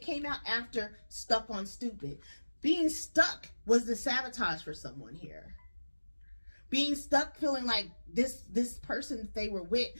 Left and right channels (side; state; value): both; inverted; correlation -1.00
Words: after stuck on stupid. Being stuck was the sabotage for someone here. Being stuck, feeling like this person they were with,